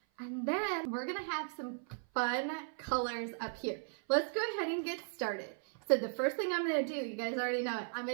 And then we're gonna have some fun colors up here. Let's go ahead and get started. So the first thing I'm gonna do, you guys already know it, I'm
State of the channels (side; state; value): left; silent; 53 dB below the other